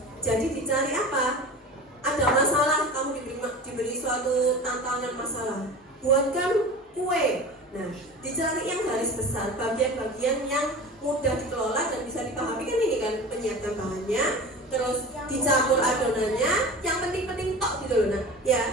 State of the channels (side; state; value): both; normal; correlation 0.34